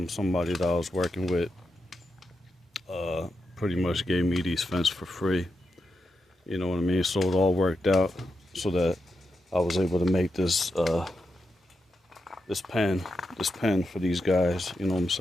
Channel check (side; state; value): both; normal; correlation 0.86